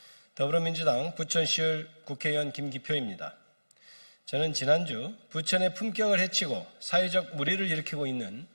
더불어민주당 부천시을 국회의원 김기표입니다. 저는 지난주 부천의 품격을 해치고 사회적 물의를 일으키고 있는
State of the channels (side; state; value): both; inverted; correlation -1.00